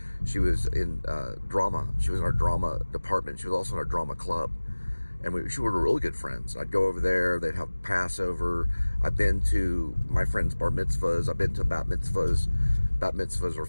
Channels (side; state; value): both; inverted; correlation -1.00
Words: She was in drama. She was in our drama department. She was also in our drama club. And we were really good friends. I'd go over there. They'd have Passover. I've been to my friends' bar mitzvahs. I've been to bat mitzvahs. Bat mitzvahs or